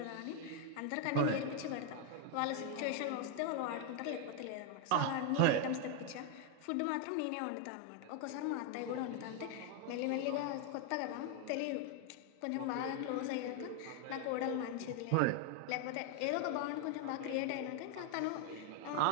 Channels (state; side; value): different; both; correlation 0.01